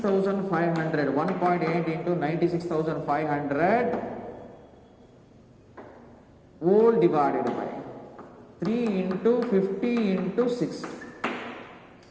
1.8 into 96,500 whole divided by 3 into 50 into 60.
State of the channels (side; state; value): both; identical; correlation 1.00